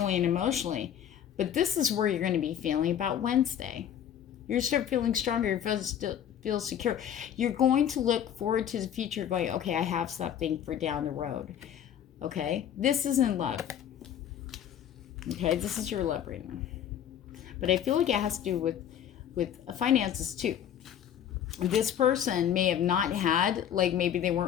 and emotionally. But this is where you're going to be feeling about Wednesday. You're start feeling stronger. You feel secure. You're going to look forward to the future going, okay, I have something for down the road. Okay, this is in love. Okay, this is your love reading. But I feel like it has to do with finances too. This person may have not had, like maybe they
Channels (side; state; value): right; quieter; 9.7 dB